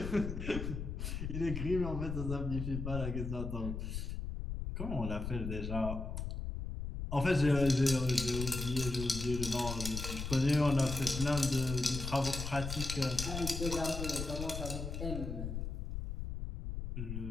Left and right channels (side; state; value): left; noise; rumble, 4 dB below the sound